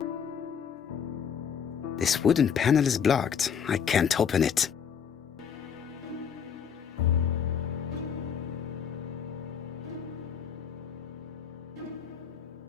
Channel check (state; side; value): quieter; right; 7.4 dB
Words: This wooden panel is blocked. I can't open it.